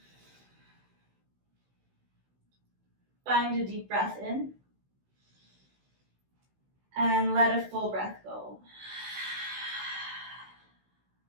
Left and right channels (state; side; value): late; left; 16 ms